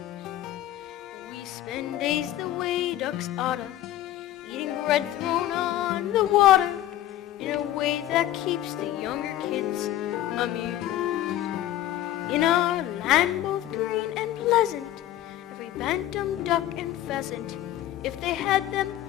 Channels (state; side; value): quieter; right; 13.5 dB